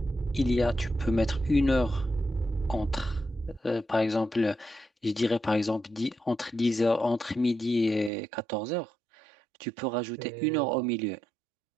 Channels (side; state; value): left; drops out; at 8.1 s